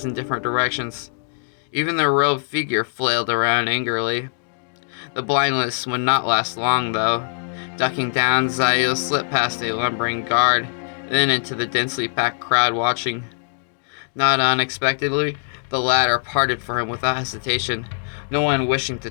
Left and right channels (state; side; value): silent; right; digital silence